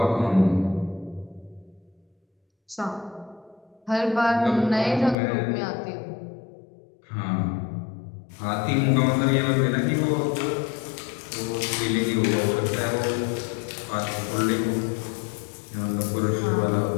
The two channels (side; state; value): right; drops out; at 5.2 s